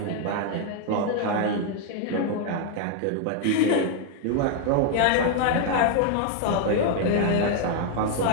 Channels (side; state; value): both; different; correlation 0.00